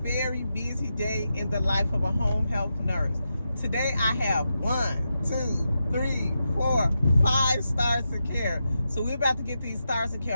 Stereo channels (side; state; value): both; inverted; correlation -0.88